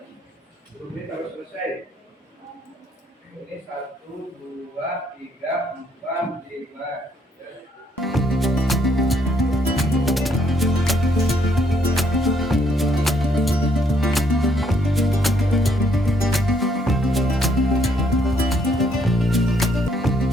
10 menit harus selesai. Ini 1, 2, 3, 4, 5.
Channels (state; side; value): normal; both; correlation 0.69